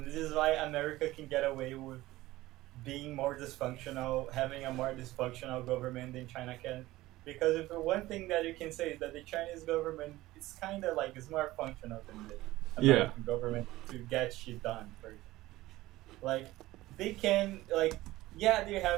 this is why America can get away with being more dysfunctional, having a more dysfunctional government than China can. Because if one thing that you can say is that the Chinese government is kind of like it's more functional than the Yeah. American government to get shit done. For like they can like yeah they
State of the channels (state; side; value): quieter; left; 17.5 dB